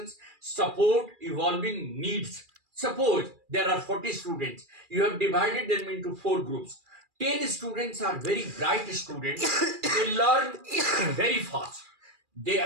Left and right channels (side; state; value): left; late; 2.4 ms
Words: support, evolving needs. Suppose there are 40 students, you have divided them into 4 groups. 10 students are very bright students, they learn very fast.